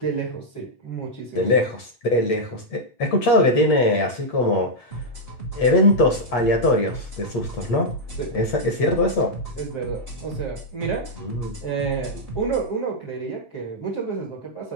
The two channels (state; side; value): late; right; 8.4 ms